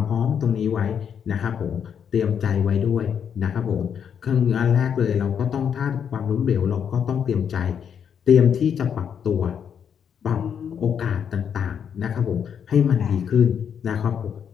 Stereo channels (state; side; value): quieter; right; 7.8 dB